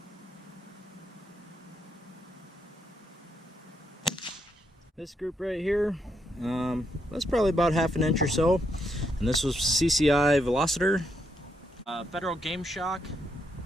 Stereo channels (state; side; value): normal; both; correlation 0.78